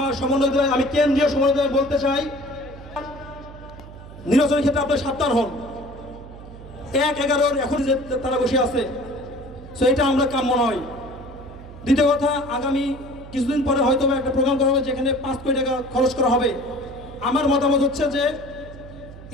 সমন্বয়, আমি কেন্দ্রীয় সমন্বয় বলতে চাই, নির্বাচনের ক্ষেত্রে আপনার সাবধান হন। 1-11 এখন যে তারা বসে আছে, সো এটা আমরা কাম্য নয়। দ্বিতীয় কথা, আগামী কিছুদিন পরে হয়তো একটা প্রোগ্রাম করা হবে যেখানে 5 কোটি টাকা খরচ করা হবে। আমার মতামত হচ্ছে যে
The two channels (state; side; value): noise; right; hum, 16 dB below the sound